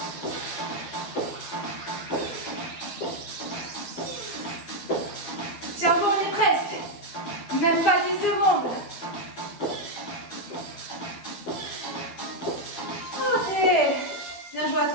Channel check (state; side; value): late; right; 12 ms